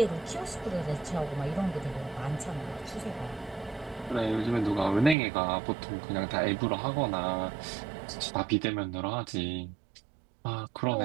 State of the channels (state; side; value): drops out; left; at 5.2 s